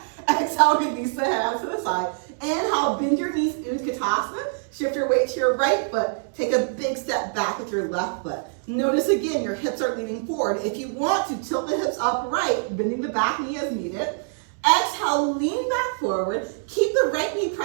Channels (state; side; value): silent; left; digital silence